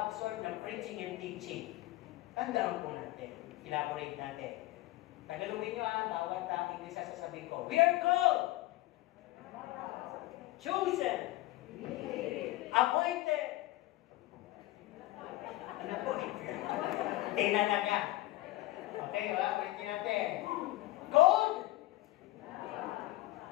ng preaching and teaching. Tandaan po natin. Elaborate natin. Tagalogin nyo bawat English sa sasabihin ko. We are called, chosen, appointed, ano po? Tinanaga. Okay, ulitin natin. Called,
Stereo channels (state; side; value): quieter; right; 17.8 dB